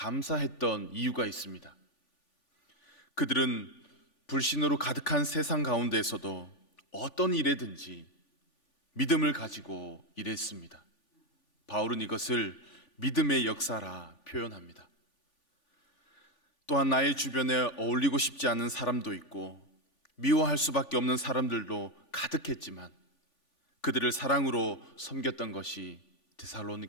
이유가 있습니다. 그들은 불신으로 가득한 세상 가운데에서도 어떤 일에든지 믿음을 가지고 일했습니다. 바울은 이것을 믿음의 역사라 표현합니다. 또한 나의 주변에 어울리고 싶지 않은 사람도 있고 미워할 수밖에 없는 사람들도 가득했지만 그들을 사랑으로 섬겼던 것이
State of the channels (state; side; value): late; right; 3.5 ms